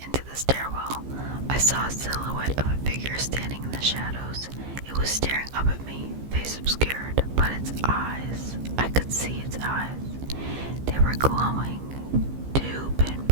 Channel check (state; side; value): late; left; 15 ms